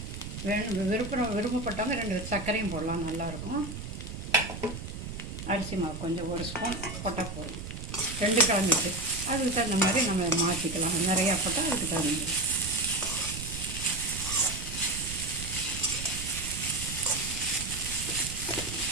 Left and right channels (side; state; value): right; noise; rumble, 8 dB below the sound